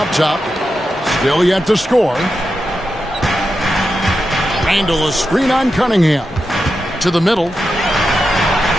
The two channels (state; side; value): normal; both; correlation 0.89